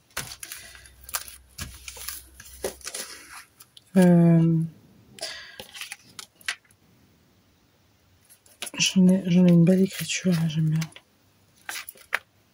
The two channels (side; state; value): both; identical; correlation 1.00